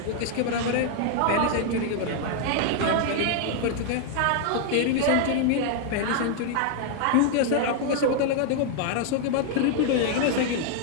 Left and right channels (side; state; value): both; different; correlation 0.00